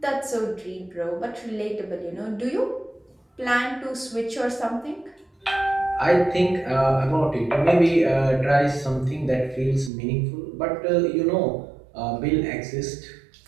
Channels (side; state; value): left; drops out; at 9.9 s